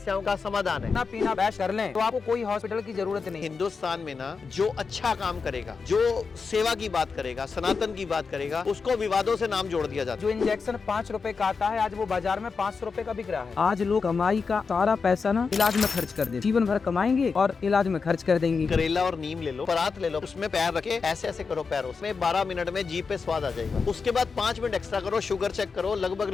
का समाधान है। ना पीना बैश कर लें तो आपको कोई हॉस्पिटल की जरूरत नहीं। हिंदुस्तान में ना जो अच्छा काम करेगा, जो सेवा की बात करेगा, सनातन की बात करेगा, उसको विवादों से नाम जोड़ दिया जाता जो इंजेक्शन 5 रुपए का आता है, आज वो बाजार में 500 रुपए का बिक रहा है। आज लोग कमाई का सारा पैसा ना इलाज में खर्च कर दे, जीवन भर कमाएंगे और इलाज में खर्च कर देंगे। है। करेला और नीम ले लो, परात ले लो, उसमें पैर रखे ऐसे ऐसे करो पैरों में, 12 मिनट में जीभ पे स्वाद आ जाएगा। उसके बाद 5 मिनट एक्स्ट्रा करो, शुगर चेक करो,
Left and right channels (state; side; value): quieter; right; 5.0 dB